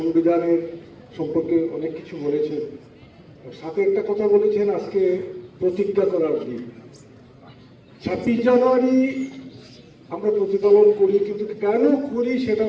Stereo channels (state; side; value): identical; both; correlation 1.00